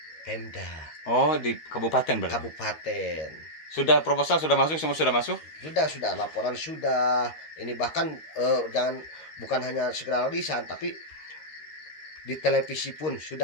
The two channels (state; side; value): late; right; 13 ms